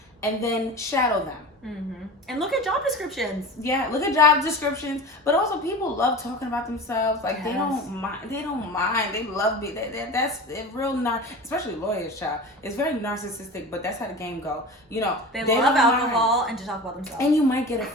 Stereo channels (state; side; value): normal; both; correlation 0.33